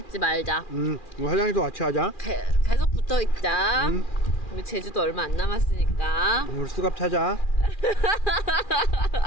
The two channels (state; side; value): late; right; 2.4 ms